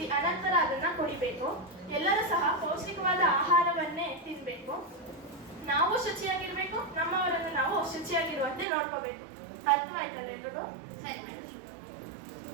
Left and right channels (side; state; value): left; drops out; at 8.7 s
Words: ಅನಂತರ ಅದನ್ನ ಕುಡಿಬೇಕು. ಎಲ್ಲರೂ ಸಹ ಪೌಷ್ಟಿಕವಾದ ಆಹಾರವನ್ನೇ ತಿನ್ಬೇಕು. ನಾವು ಶುಚಿಯಾಗಿರ್ಬೇಕು, ನಮ್ಮವರನ್ನು ನಾವು ಶುಚಿಯಾಗಿರುವಂತೆ ನೋಡ್ಕೋಬೇಕು. ಅರ್ಥವಾಯ್ತಲ್ಲ ಎಲ್ರಿಗೂ? ಸರಿ ಮೇಡಮ್.